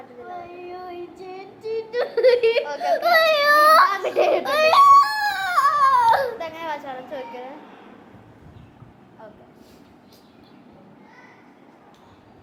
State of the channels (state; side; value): identical; both; correlation 1.00